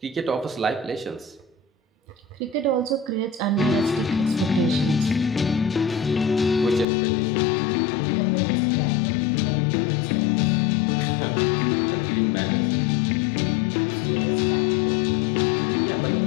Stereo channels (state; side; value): drops out; right; at 6.9 s